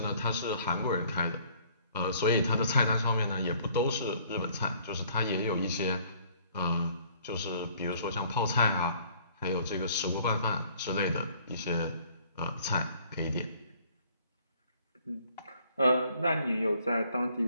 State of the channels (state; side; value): inverted; both; correlation -0.59